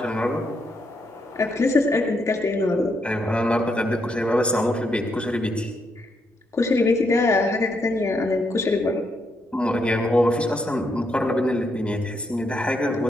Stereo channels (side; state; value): both; normal; correlation 0.78